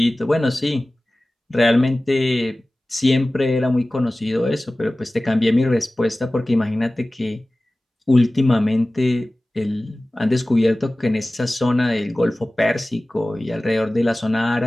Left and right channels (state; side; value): normal; both; correlation 0.97